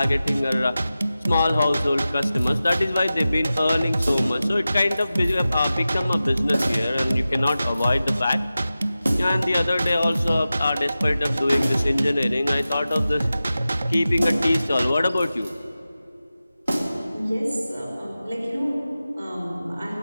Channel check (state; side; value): inverted; both; correlation -0.94